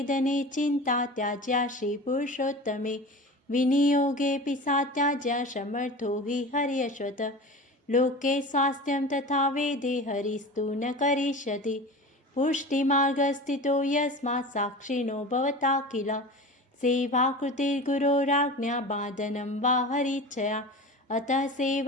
चिन्ता त्याज्या श्रीपुरुषोत्तमे विनियोगेऽपि सा त्याज्या समर्थो हि हर्यश्वत लोके स्वास्थ्यं तथा वेदे हरिस्तु न करिष्यति पुष्टिमार्गस्थितो यस्मात् साक्षिणो भवता किल सेवाकृतिर्गुरोराज्ञा बाधनं वा हरिच्छया अतः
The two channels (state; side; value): normal; both; correlation 0.33